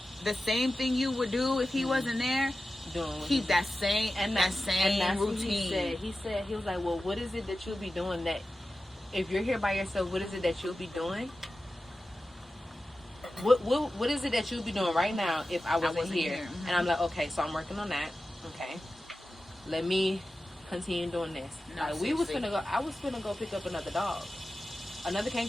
the same thing you would do if he wasn't there, keep that same routine. He was like, well, what is it that you'll be doing that, if you're here by yourself, what is it that you'll be doing what is it that you'd be doing right now if I wasn't here? Mhm. And I'm like, okay, so I'm working on that. Okay, let me continue doing this. No, Like, I was finna go pick up another dog, another Cane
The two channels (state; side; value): normal; both; correlation 0.94